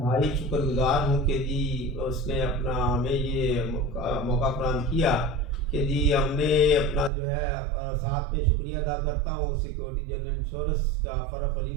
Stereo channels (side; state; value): left; drops out; at 7.1 s